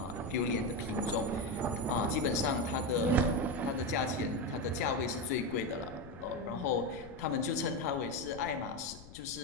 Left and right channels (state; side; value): noise; left; rumble, 17 dB below the sound